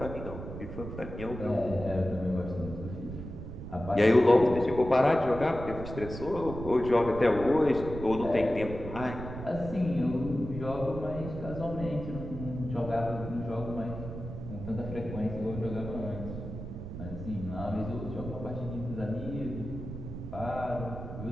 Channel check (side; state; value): right; noise; rumble, 9 dB below the sound